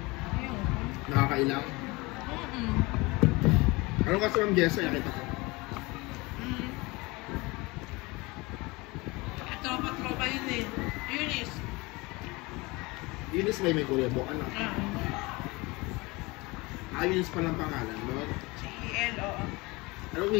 Ayun. Nakakailang. Ano kasi ang Jessa, nakita ko. Eunice may kuryebo, ano? Ah. Eunice pa lang pangalan, no? CEL, oo. Anong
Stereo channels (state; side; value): quieter; right; 24.1 dB